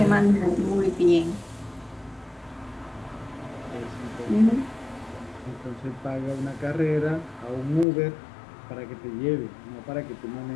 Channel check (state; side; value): drops out; right; at 7.9 s